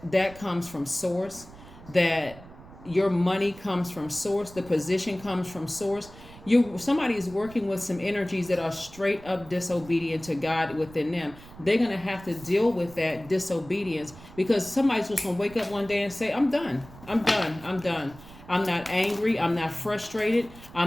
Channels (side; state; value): right; noise; rumble, 19 dB below the sound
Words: comes from source, that your money comes from source, the position comes from source, somebody is working with some energies that are straight up disobedient to God within them. They're going to have to deal with that disobedience, because somebody's just going to wake up one day and say, I'm done. I'm not angry. I'm not frustrated.